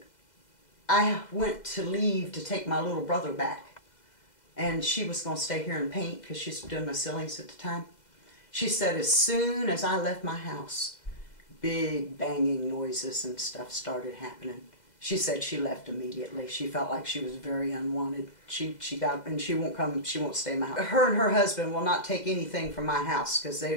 I went to leave to take my little brother back. And she was going to stay here and paint because she's doing my ceilings at the time. She said as soon as I left my house, big banging noises and stuff started happening. She said she left immediately. She felt like she was very unwanted. She got, and she won't come, she won't stay in my house. Her and her husband will not take anything from my house because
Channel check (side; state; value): right; late; 2.0 ms